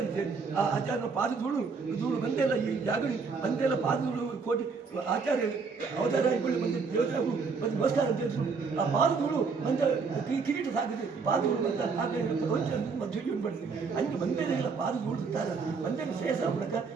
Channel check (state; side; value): quieter; left; 4.9 dB